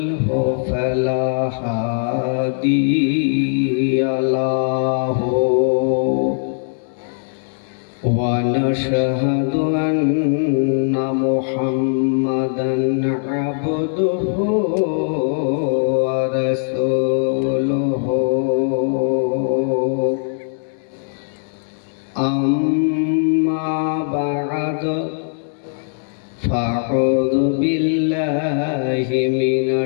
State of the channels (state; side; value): silent; right; 61 dB below the other